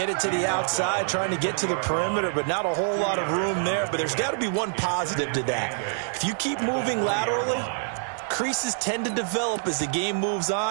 it to the outside, trying to get to the perimeter, but not a whole lot of room there. But there's got to be one positive to that. If you keep moving laterally, creases tend to develop as the game moves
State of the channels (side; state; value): left; silent; digital silence